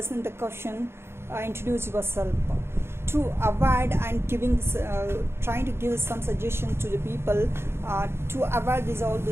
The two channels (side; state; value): left; late; 0.12 ms